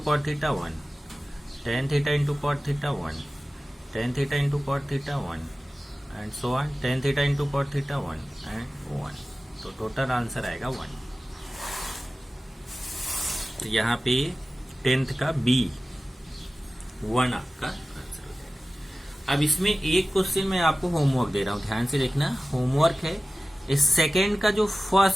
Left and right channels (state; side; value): normal; both; correlation 0.96